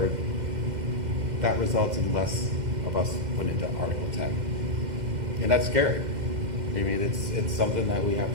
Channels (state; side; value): late; left; 2.1 ms